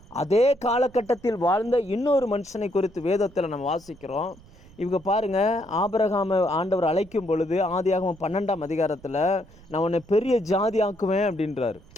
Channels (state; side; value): noise; right; rumble, 24 dB below the sound